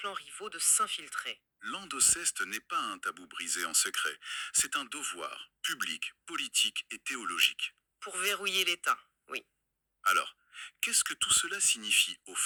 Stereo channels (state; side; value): identical; both; correlation 1.00